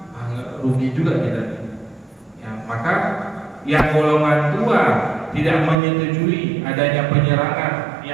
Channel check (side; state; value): left; drops out; at 5.8 s